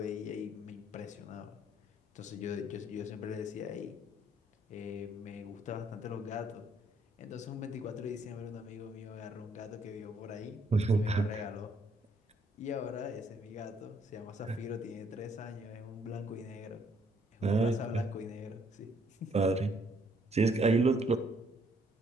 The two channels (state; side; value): normal; both; correlation 0.68